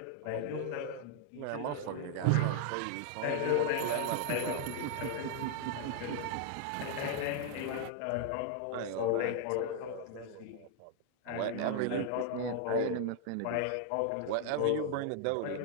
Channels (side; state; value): both; different; correlation -0.01